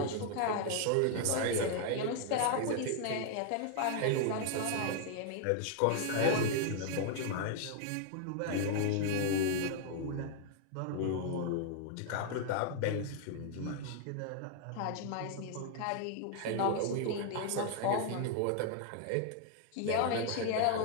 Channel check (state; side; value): different; both; correlation 0.00